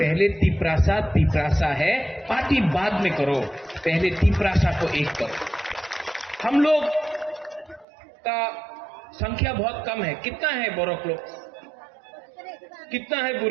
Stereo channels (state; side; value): drops out; left; at 7.9 s